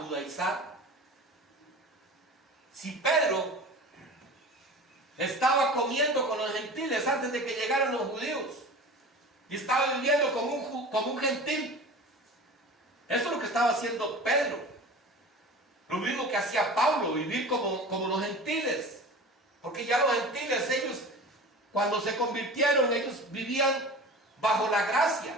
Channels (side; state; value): both; normal; correlation 0.36